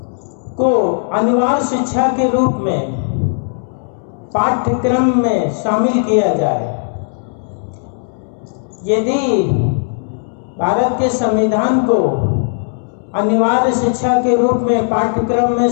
को अनिवार्य शिक्षा के रूप में पाठ्यक्रम में शामिल किया जाए। यदि भारत के संविधान को अनिवार्य शिक्षा के रूप में पाठ्यक्रम में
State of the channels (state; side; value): silent; right; 69 dB below the other